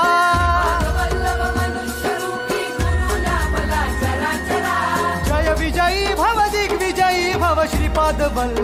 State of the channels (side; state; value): both; identical; correlation 1.00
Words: जय विजयी भव दिग्विजयी भव श्रीपाद